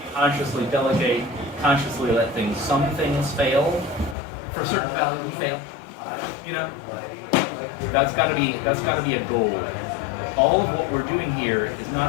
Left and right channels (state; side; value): drops out; right; at 4.2 s